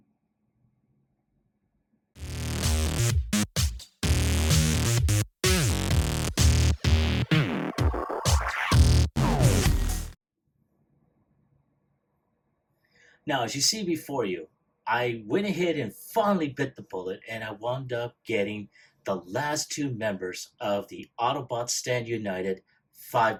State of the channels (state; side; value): identical; both; correlation 1.00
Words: Now, as you see before you, I went ahead and finally bit the bullet, and I wound up getting the last two members of the Autobots Stand United